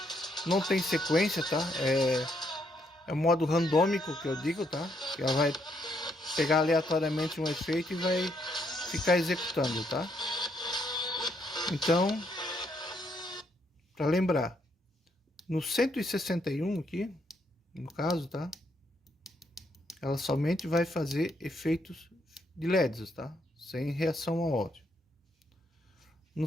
não tem sequência, tá? É o modo randômico que eu digo, tá? Ela vai pegar aleatoriamente um efeito e vai ficar executando, tá? Então, para lembrar, no 161 aqui, no caso, tá? Ela somente vai fazer efeitos de LEDs, tá? Sem reação ao áudio. No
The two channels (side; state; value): both; normal; correlation 0.74